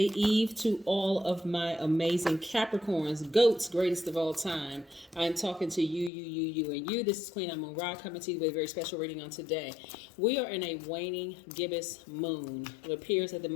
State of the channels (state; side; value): drops out; right; at 6.1 s